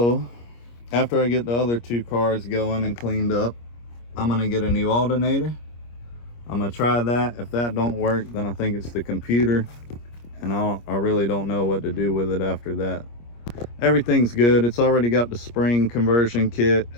after I get the other 2 cars going and cleaned up, I'm gonna get a new alternator. I'm gonna try that. If that don't work, then I think it's the computer, and I really don't know what to do with it after that. Everything's good. It's already got the spring conversion kit.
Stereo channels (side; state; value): right; late; 25 ms